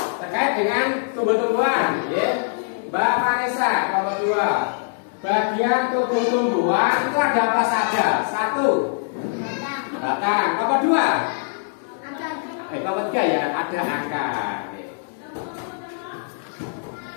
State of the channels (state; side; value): silent; right; 61 dB below the other